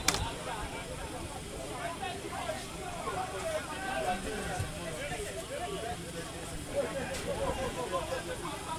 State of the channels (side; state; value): both; identical; correlation 1.00